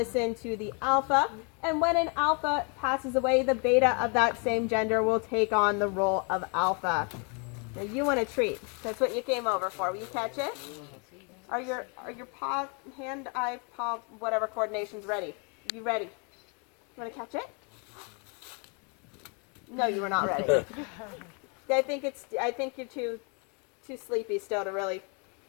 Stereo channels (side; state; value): right; quieter; 35.9 dB